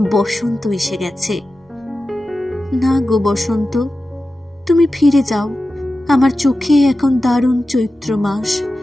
বসন্ত এসে গেছে। না গো বসন্ত, তুমি ফিরে যাও। আমার চোখে এখন দারুণ চৈত্র মাস।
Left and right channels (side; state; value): both; normal; correlation 0.93